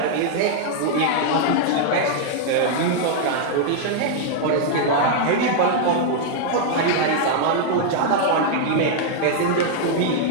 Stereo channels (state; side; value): different; both; correlation -0.01